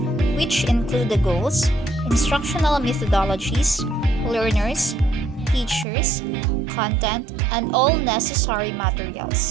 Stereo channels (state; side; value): drops out; left; at 5.9 s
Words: which include the goals, instructional methodologies, learners, teachers, content, and all necessary